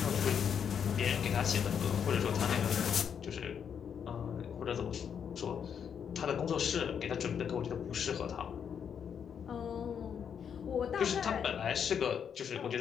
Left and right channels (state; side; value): quieter; right; 7.7 dB